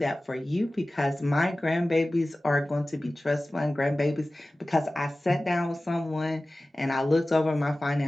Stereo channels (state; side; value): normal; both; correlation 0.97